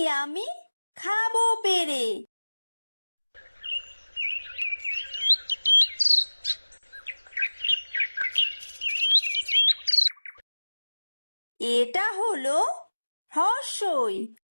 আমি খাবো পেরে। এটা হলো হ্রস্বই।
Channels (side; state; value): both; inverted; correlation -1.00